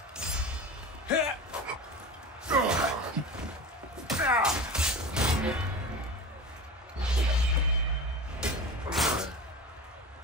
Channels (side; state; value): both; normal; correlation 0.31